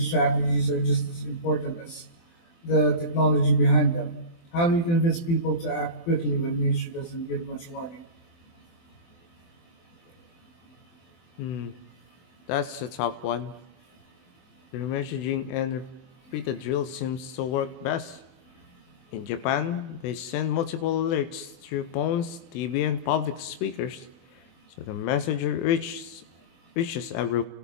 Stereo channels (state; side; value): late; right; 24 ms